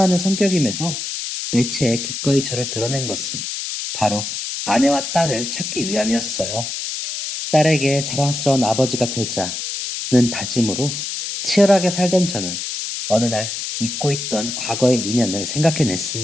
성격임에도 매체에 기꺼이 저를 드러낸 것은 바로 아내와 딸을 찾기 위함이었어요. 딸에게 자랑스러운 아버지가 되자는 다짐으로 치열하게 살던 저는 어느 날 잊고 있던 과거의 인연을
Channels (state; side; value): noise; left; hiss, 5 dB below the sound